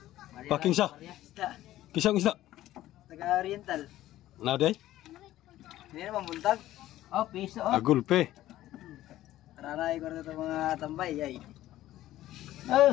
Packing siya? Isda. Kisang isda. Taga-oriental. Naday? Hindi naman buntag. Oh, piso oh. Agulpe. Taranay ko na ito mga tambay ay.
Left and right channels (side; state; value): right; quieter; 14.4 dB